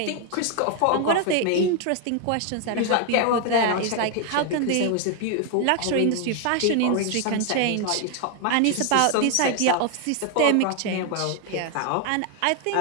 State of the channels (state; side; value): different; both; correlation 0.00